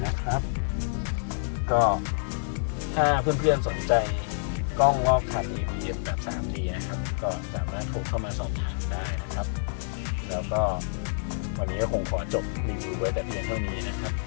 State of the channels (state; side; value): silent; right; digital silence